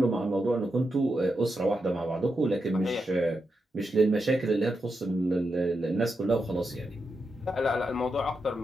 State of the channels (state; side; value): normal; both; correlation 0.86